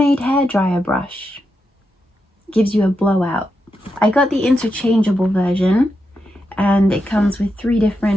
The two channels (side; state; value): both; normal; correlation 0.86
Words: hairdryer brush. Gives you a blowout. I got the interchangeable version and it comes with 3